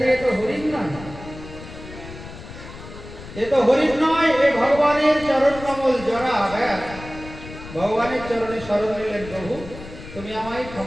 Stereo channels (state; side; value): noise; left; rumble, 14 dB below the sound